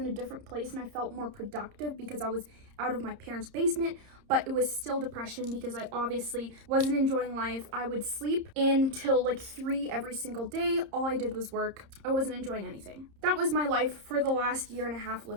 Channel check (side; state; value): left; late; 30 ms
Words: a different place and I felt more productive because I was out of my parents' basement, but it was still depression because I obviously wasn't enjoying life. I would sleep until like 3 every single day. All I did was work. I wasn't enjoying anything. That was my life for the last 1.5 years